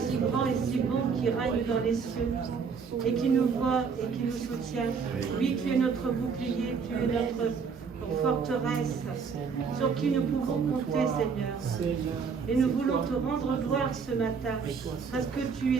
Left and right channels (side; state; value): left; quieter; 5.7 dB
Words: si grand et si bon qui règne dans les cieux et qui nous voit et qui nous soutient. Oui, tu es notre bouclier, tu es notre forteresse sur qui nous pouvons compter, Seigneur. Et nous voulons te rendre gloire ce matin parce que tu